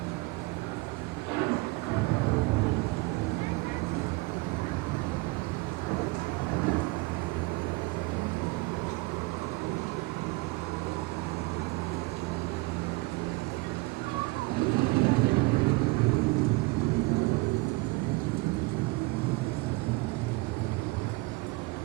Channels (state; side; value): quieter; left; 23.6 dB